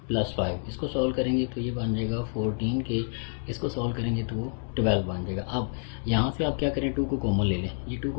+ 5, इसको सॉल्व करेंगे तो ये बन जाएगा 14k, इसको सॉल्व करेंगे तो वो 12 बन जाएगा। अब यहाँ से आप क्या करें, 2 को कॉमन ले लें, ये 2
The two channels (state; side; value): silent; right; 59 dB below the other